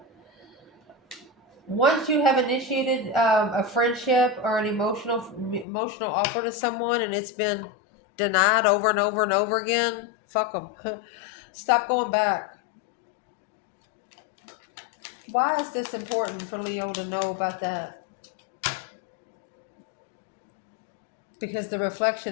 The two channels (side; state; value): right; drops out; at 5.7 s